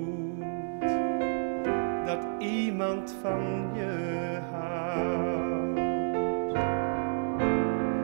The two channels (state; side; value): silent; left; digital silence